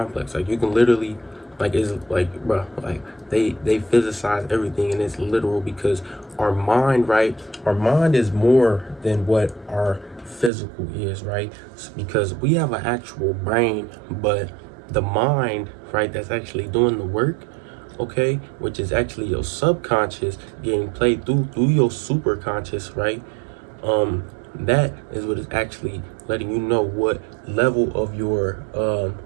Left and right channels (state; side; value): drops out; left; at 10.5 s